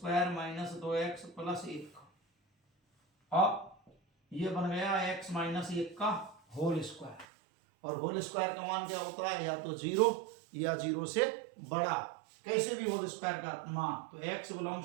minus 2x plus 1। अब ये बन गया x माइनस 1 का होल स्क्वायर, और होल स्क्वायर का मान क्या होता है, या तो 0 या 0 से बड़ा, कैसे भी होल स्क्वायर का मान। तो x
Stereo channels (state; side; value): drops out; left; at 7.2 s